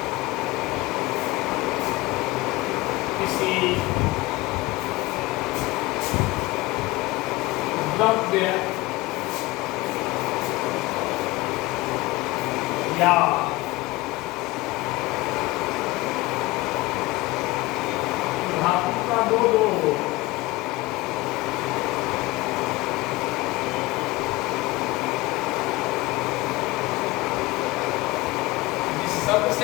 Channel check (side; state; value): right; quieter; 20.6 dB